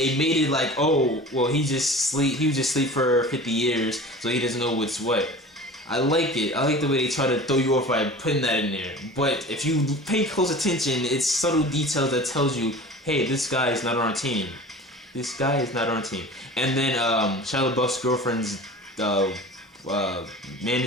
made it like, oh, well, he was just asleep for 50 years, so he doesn't know what's what. I like it. I like the way they try to throw you off by putting that in there. But if you pay close attention, it's subtle details that tells you, hey, this guy is not on our team. This guy is not on our team. And then Shia LaBeouf's girlfriend's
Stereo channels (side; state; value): both; normal; correlation 0.38